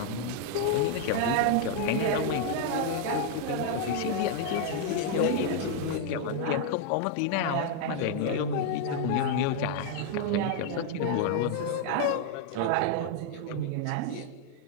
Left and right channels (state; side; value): different; both; correlation 0.00